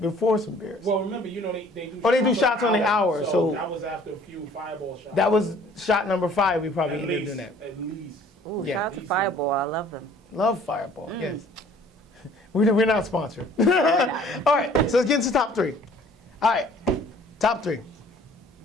before some beers? Well, remember, you know, they do. Oh, they do shots on the hour, so that was after a few fireball shots. That was shot number 5. We probably At ended up least, doing that. At least. Ooh, Yeah. shout out to Fireball. I love them. Love Fireball. Yes. We're not sponsored. All right, so let's get into top 3. All right, top 3.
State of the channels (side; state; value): both; normal; correlation 0.54